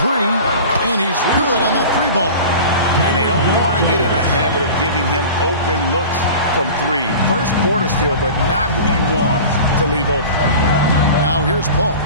and he's good on the three ball. And they don't want to get in a habit of giving him open looks from three. First quarter still, but not who you want to leave open. Now here's Paul.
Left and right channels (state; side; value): inverted; both; correlation -0.37